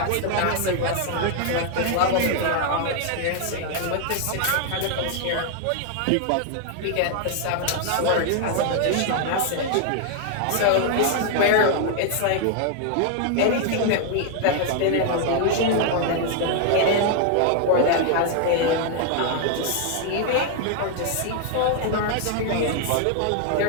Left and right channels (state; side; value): different; both; correlation 0.00